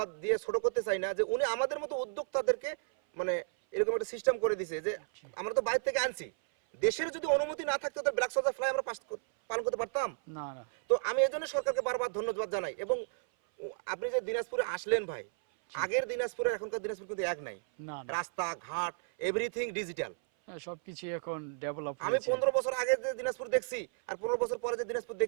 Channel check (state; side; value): silent; left; 56 dB below the other